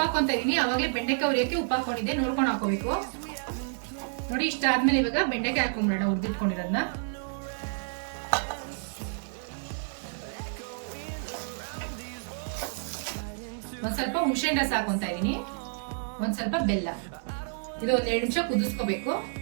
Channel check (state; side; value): silent; left; 58 dB below the other